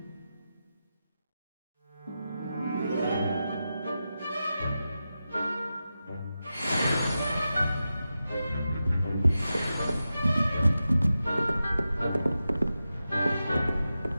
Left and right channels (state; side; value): inverted; both; correlation -0.91